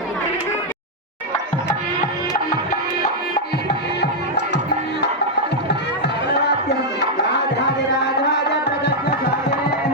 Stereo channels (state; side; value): normal; both; correlation -0.02